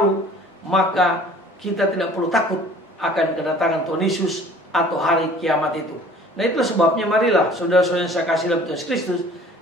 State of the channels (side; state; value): both; normal; correlation 0.50